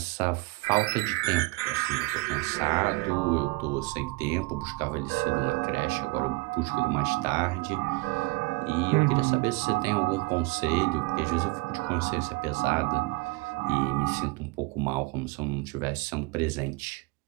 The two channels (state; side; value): quieter; left; 24.6 dB